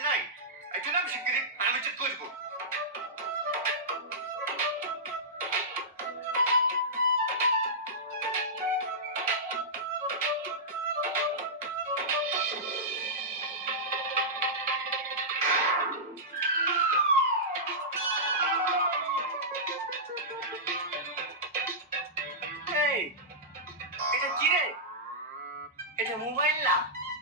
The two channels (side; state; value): both; normal; correlation -0.14